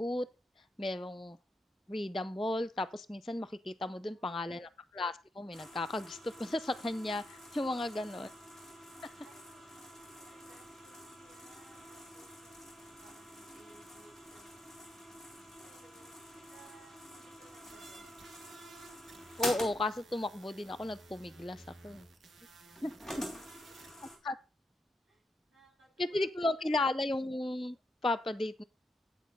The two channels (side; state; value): both; normal; correlation 0.82